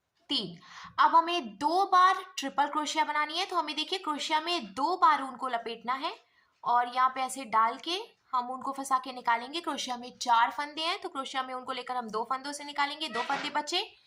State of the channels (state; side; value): identical; both; correlation 1.00